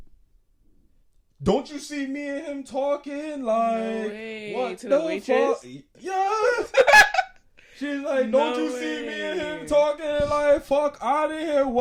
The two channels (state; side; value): identical; both; correlation 1.00